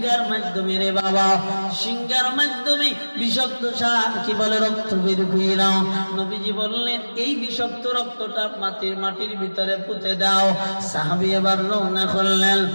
মাধ্যমে, রে বাবা সিংহার মাধ্যমে বিষাক্ত কি বলে রক্ত বের কইরা নবীজি বললেন এই বিষাক্ত রক্তটা মাটির ভিতরে পুঁতে দাও। সাহাবী এবার রওনা করলেন,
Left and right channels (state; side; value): inverted; both; correlation -1.00